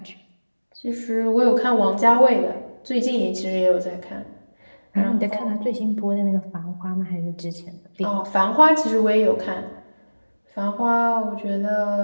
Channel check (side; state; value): both; inverted; correlation -1.00